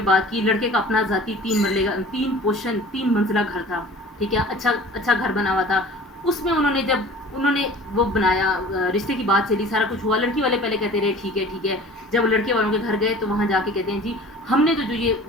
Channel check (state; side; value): normal; both; correlation 0.44